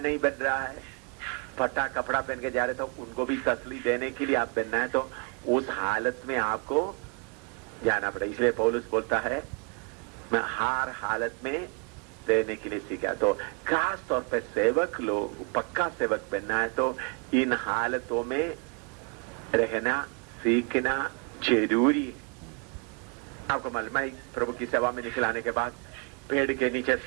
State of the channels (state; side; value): quieter; left; 35.2 dB